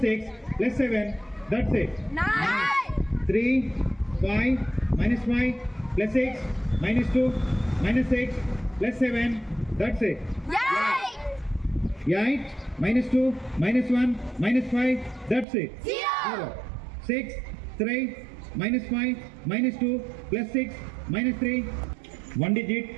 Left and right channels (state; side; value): drops out; left; at 15.5 s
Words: 6 plus 7. That's it. 9. 3 5 minus 5 plus 6 minus 2 minus 6 plus 7. That's it. 8 minus 2 minus 1 minus 5. That's it. 0. 6 3 minus 5 minus 2 plus 6 minus 3. One digit